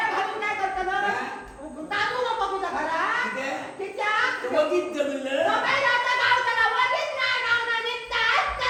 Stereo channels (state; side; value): identical; both; correlation 1.00